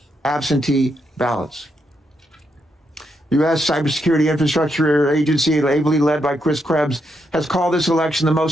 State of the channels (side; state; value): both; normal; correlation 0.80